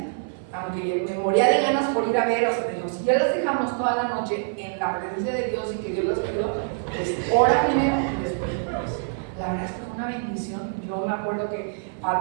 aunque me moría de ganas por ir a ver, o sea, digo, si ya las dejamos toda la noche en la presencia de Dios y que Dios las cuidó, pues ora primero y después oras. La verdad es que fue una bendición. Yo me acuerdo que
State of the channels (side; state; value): left; silent; 57 dB below the other